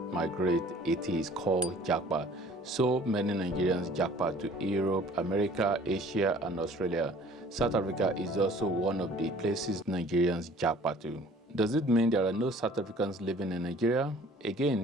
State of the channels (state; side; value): normal; both; correlation 0.51